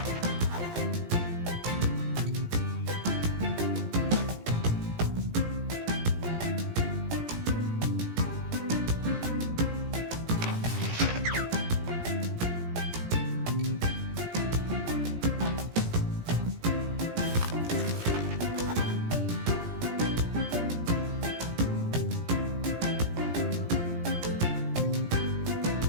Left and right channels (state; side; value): late; left; 17 ms